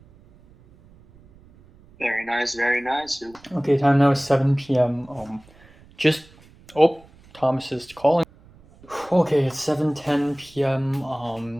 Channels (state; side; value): noise; right; rumble, 26 dB below the sound